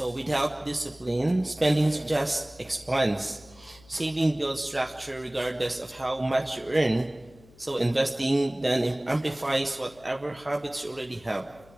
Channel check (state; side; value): noise; left; hum, 25 dB below the sound